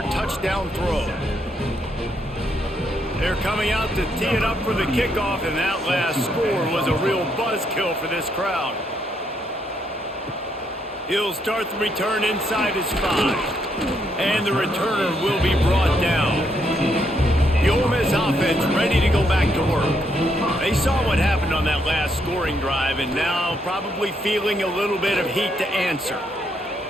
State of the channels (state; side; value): normal; both; correlation 0.75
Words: touchdown throw. They're coming out to tee it up for the kickoff, and that last score was a real buzzkill for this crowd. He'll start the return inside his 5, and the returner will be brought down. The Ole Miss offense ready to go back to work. They saw what happened on that last scoring drive, and now probably feeling a little bit of heat to answer.